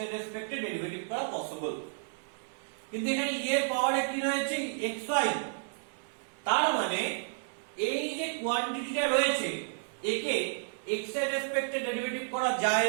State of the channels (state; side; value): silent; left; digital silence